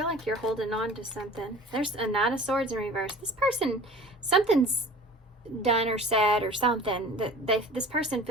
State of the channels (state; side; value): normal; both; correlation 0.43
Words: like you're holding on to something. There's a Knight of Swords in reverse. This person, something's done or said or something that this person